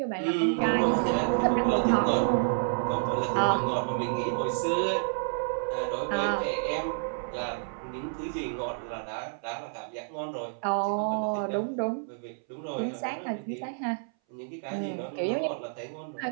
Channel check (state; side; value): silent; left; 58 dB below the other